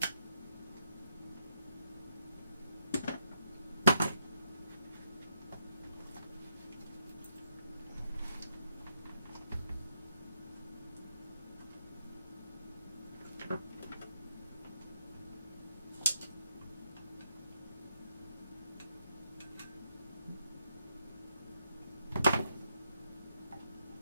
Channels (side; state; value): both; inverted; correlation -0.79